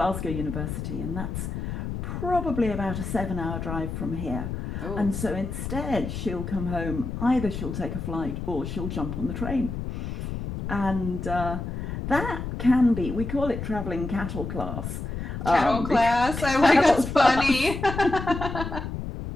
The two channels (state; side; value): noise; left; rumble, 5 dB below the sound